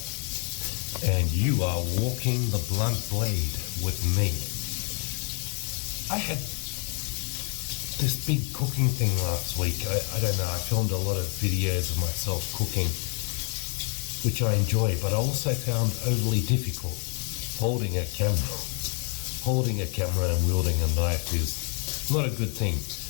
and you are walking the blunt blade with me. I had this big cooking thing last week. I don't know, I filmed a lot of videos of myself cooking, which I enjoy, but I also found overly difficult. Holding a camera and wielding a knife is not a good thing.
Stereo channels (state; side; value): quieter; right; 39.8 dB